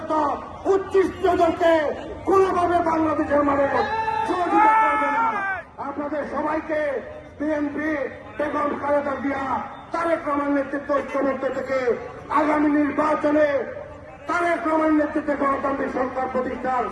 উচ্ছিষ্টদেরকে কোনোভাবে বাংলাদেশের মানুষ সহযোগিতা করবে না। আপনাদের সবাইকে বিএনপি বেগম খালেদা জিয়া তারেক রহমানের নেতৃত্ব ঐক্যবদ্ধ থেকে আগামী নির্বাচনে তারেক রহমানের নেতৃত্বে গণতান্ত্রিক সরকার প্রতিষ্ঠার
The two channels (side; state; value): both; identical; correlation 1.00